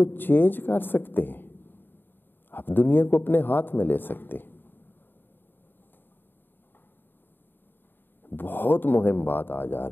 چینج کر سکتے ہیں. آپ دنیا کو اپنے ہاتھ میں لے سکتے ہیں. بہت مہم بات آج آ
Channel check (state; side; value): late; right; 0.095 ms